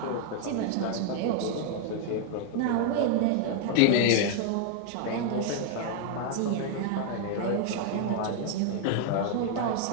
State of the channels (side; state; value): both; different; correlation 0.00